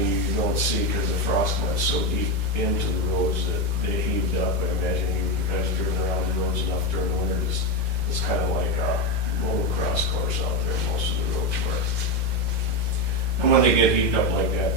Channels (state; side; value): late; left; 2.3 ms